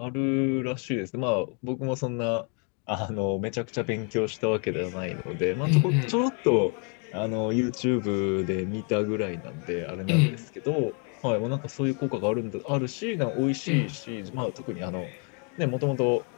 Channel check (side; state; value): right; quieter; 38.4 dB